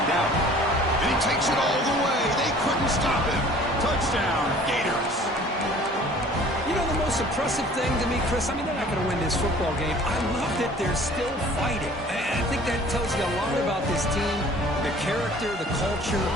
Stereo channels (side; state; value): both; normal; correlation 0.50